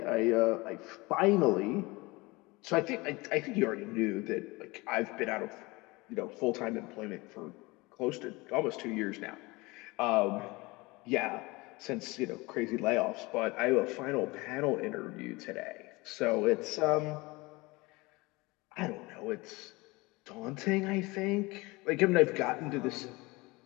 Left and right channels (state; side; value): quieter; right; 23.4 dB